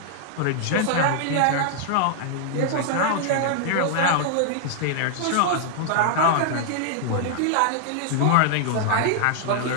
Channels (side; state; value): both; different; correlation 0.00